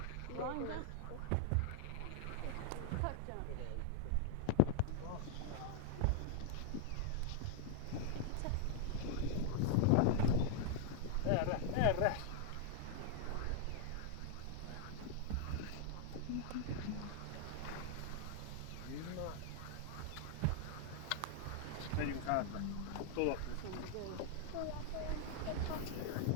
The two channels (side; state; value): both; different; correlation 0.00